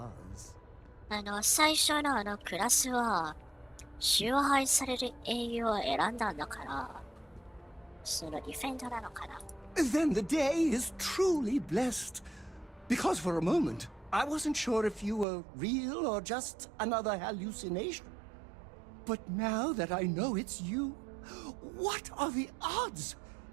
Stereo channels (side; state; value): left; drops out; at 15.2 s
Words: 最初のクラスは崇拝される英雄を選んだんだから、そのディフェンダーなのかな。Then the day is truly blessed. Because for a moment, I wasn't sure if you were real or just another hallucination. But now that I know it's you, what are the odds?